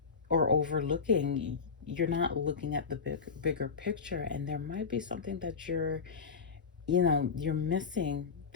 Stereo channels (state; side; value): quieter; right; 5.5 dB